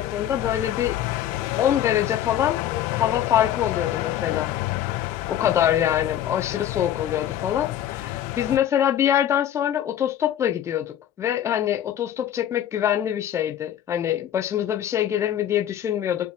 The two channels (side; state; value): right; quieter; 10.9 dB